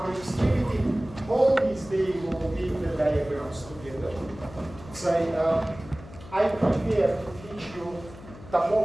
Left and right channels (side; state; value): left; noise; hum, 17 dB below the sound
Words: extremity. All these days will be the diagrams together. So I prepare to teach you